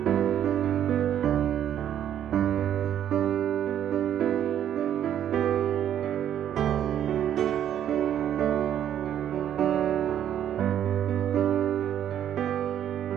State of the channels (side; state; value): left; quieter; 10.3 dB